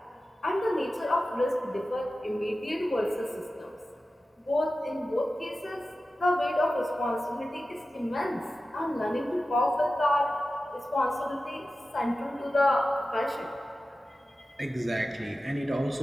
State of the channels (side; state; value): both; normal; correlation 0.94